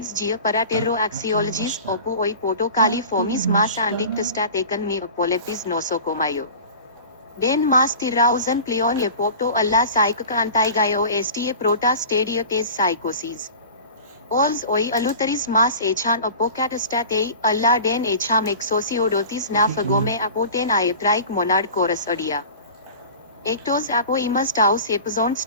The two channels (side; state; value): both; inverted; correlation -0.38